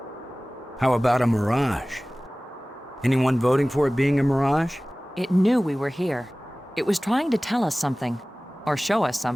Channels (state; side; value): normal; both; correlation 0.98